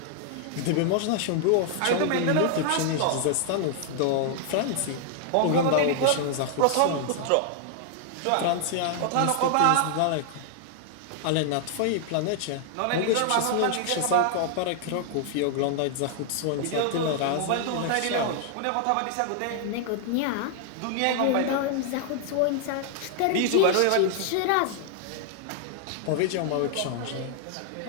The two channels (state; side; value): different; both; correlation 0.00